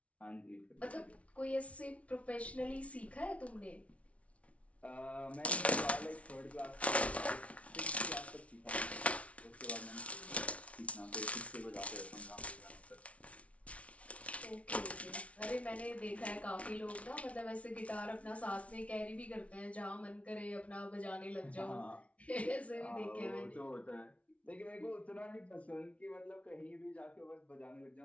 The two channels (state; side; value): late; right; 0.064 ms